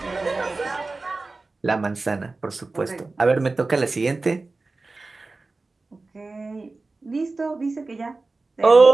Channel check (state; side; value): quieter; left; 3.5 dB